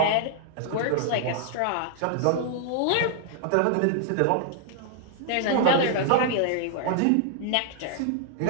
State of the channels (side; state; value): both; different; correlation -0.01